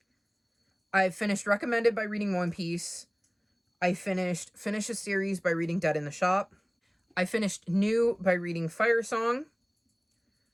I finished Recommended by reading One Piece. I finished Finish a Series by reading Dead in the Shop. I finished New by reading Fire Song.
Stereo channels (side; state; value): both; identical; correlation 1.00